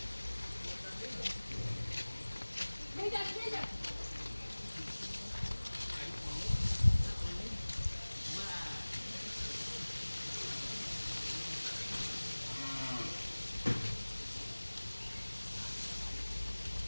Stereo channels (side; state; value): both; inverted; correlation -1.00